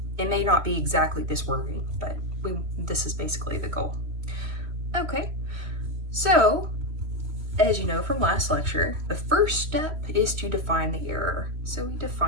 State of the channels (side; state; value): left; late; 3.0 ms